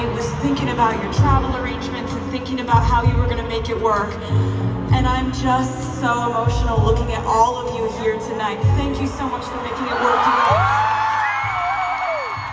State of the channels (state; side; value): identical; both; correlation 1.00